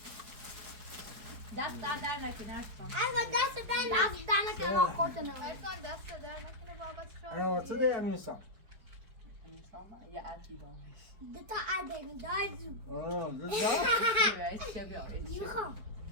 دست در نکنه اشکان دست دست ما خوردن ارسان دست در نکنه بابت انا واسه ده امیرسان دتا عدن دایز آه میخوام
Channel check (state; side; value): late; left; 4.7 ms